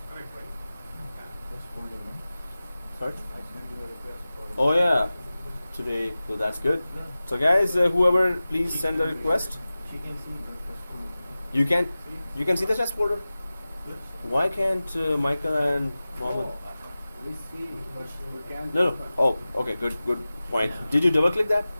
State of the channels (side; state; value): both; inverted; correlation -0.97